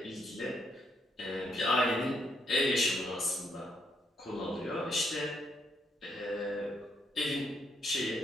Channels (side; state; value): both; normal; correlation 0.75